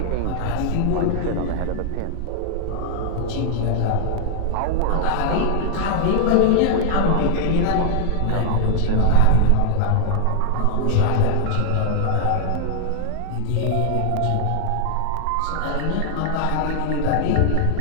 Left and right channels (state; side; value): different; both; correlation -0.01